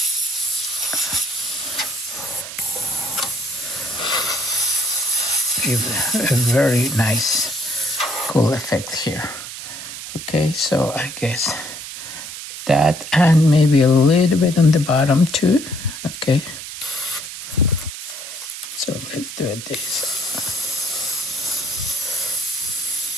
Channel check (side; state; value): right; noise; hiss, 10 dB below the sound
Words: give a very nice, cool effect here. Okay, so I guess that, and maybe a little bit on the bottom too. Okay, so let's do it this.